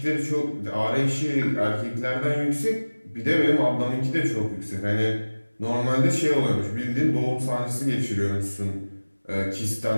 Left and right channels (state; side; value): inverted; both; correlation -1.00